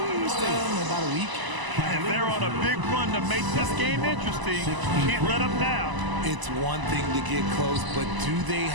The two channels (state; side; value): late; left; 1.0 ms